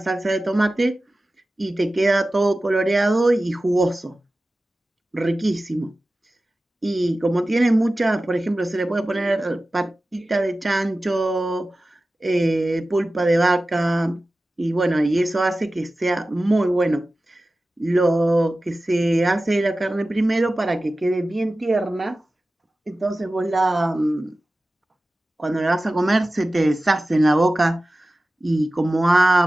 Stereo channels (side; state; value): both; normal; correlation 0.95